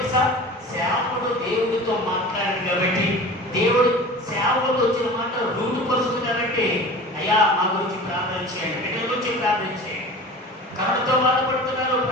సేవకుడు దేవుడితో మాట్లాడాడు కాబట్టి, దేవుడు సేవకుడు వచ్చిన మాట రూటు పరుస్తుంది కాబట్టి, అయ్యా మా గురించి ప్రార్థన చేయండి, బిడ్డల గురించి ప్రార్థన చేయండి, కరుణతో బాధపడుతున్నారు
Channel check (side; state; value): both; normal; correlation 0.38